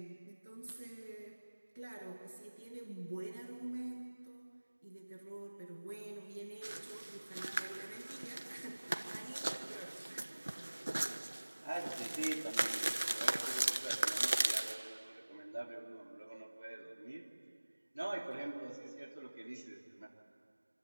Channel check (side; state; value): both; inverted; correlation -1.00